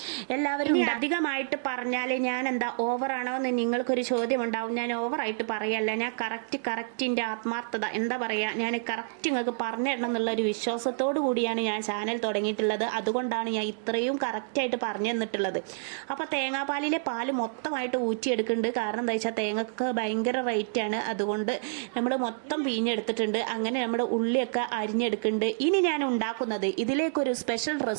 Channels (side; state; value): left; silent; digital silence